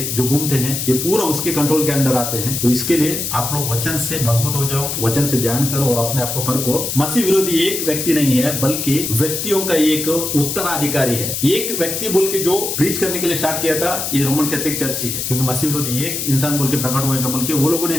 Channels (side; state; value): left; noise; hiss, 3 dB below the sound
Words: जो घूमते हैं, ये पूरा उसके कंट्रोल के अंदर आते हैं। तो इसके लिए आप लोग वचन से मजबूत हो जाओ, वचन से ध्यान करो और अपने आप को परखो। मसीह विरोधी एक व्यक्ति नहीं है बल्कि व्यक्तियों का एक उत्तराधिकारी है। एक व्यक्ति बोल के जो प्रीच करने के लिए स्टार्ट किया था ये रोमन कैथोलिक चर्च ही है, क्योंकि मसीह विरोधी एक इंसान बोल के प्रकट होगा बोल के वो लोगों